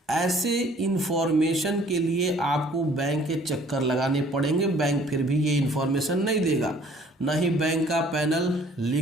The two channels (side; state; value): both; normal; correlation 0.56